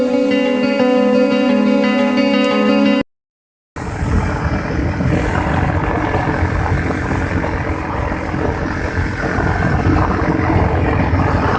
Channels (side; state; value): both; identical; correlation 1.00